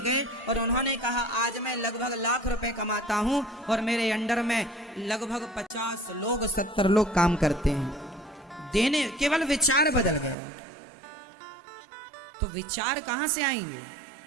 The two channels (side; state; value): left; drops out; at 10.4 s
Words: गए और उन्होंने कहा आज मैं लगभग लाख रुपए कमाता हूं और मेरे अंडर में लगभग 50 लोग 70 लोग काम करते हैं। देने, केवल विचार बदल गए। तो विचार कहां से आएंगे?